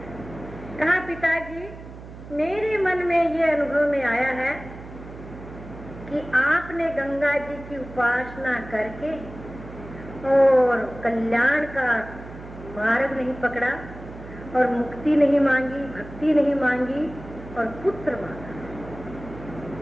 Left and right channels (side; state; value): right; noise; hum, 15 dB below the sound